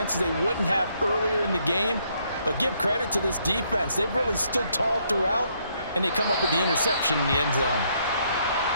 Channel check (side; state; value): both; inverted; correlation -0.71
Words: they wouldn't have earlier in the game. But give credit to this defense. They've really stood tall throughout, and they come up with the interception in the end zone.